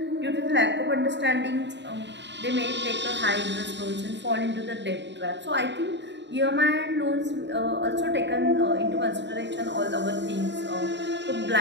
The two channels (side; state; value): left; late; 0.52 ms